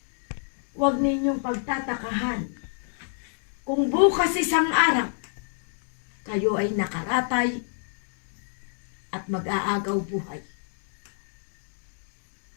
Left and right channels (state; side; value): silent; right; 59 dB below the other